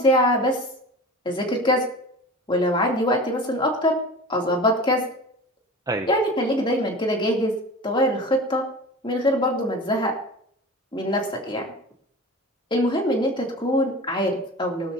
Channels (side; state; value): both; normal; correlation 0.35